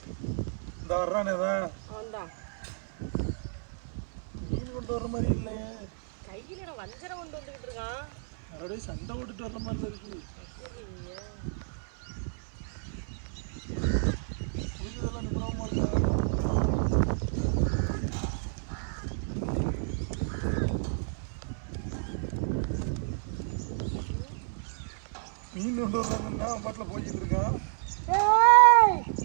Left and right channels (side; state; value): left; silent; 57 dB below the other